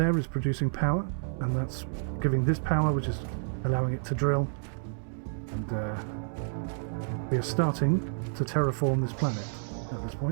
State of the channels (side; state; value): left; silent; 58 dB below the other